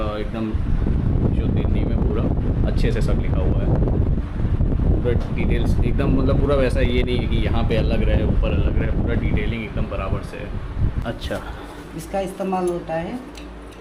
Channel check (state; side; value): identical; both; correlation 1.00